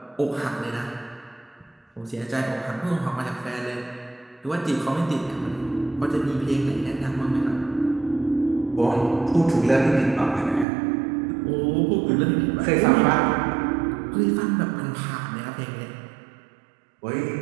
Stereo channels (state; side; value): drops out; left; at 10.7 s